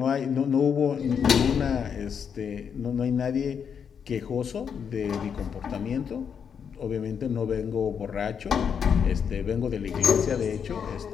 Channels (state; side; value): quieter; right; 7.2 dB